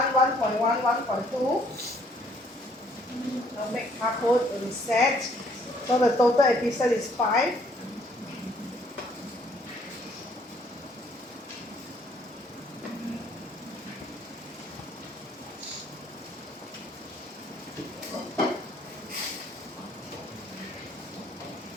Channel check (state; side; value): normal; both; correlation 0.63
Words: 1.1, 1.2. So make hardcode reset. So the total episode is 5.